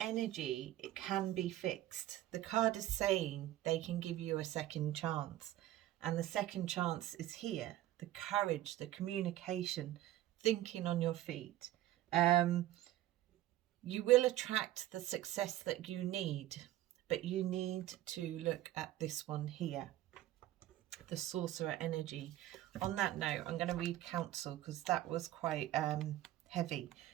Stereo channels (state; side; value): quieter; left; 14.4 dB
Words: it can be fixed. The card is saying they can give you a second chance, and the second chance is here. The courage, the communication, thinking on your feet. You will attract the success that you need, but you need to look at this one here, the Sorcerer energy. On that note, I'm going to read Council because that was quite heavy